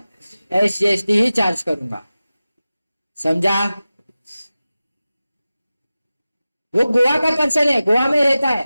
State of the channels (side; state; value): both; inverted; correlation -0.96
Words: एसजीएसटी ही चार्ज करूंगा। समझा? वो गोवा का पर्सन है, गोवा में रहता